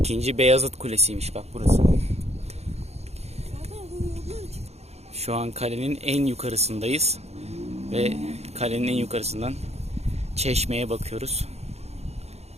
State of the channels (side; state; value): left; late; 0.31 ms